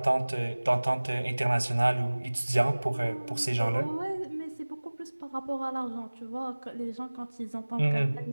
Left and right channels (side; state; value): both; inverted; correlation -1.00